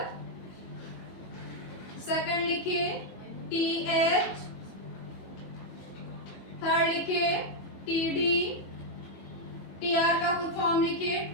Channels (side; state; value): right; late; 22 ms